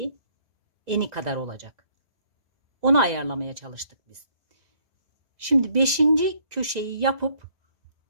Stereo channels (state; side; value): late; left; 1.5 ms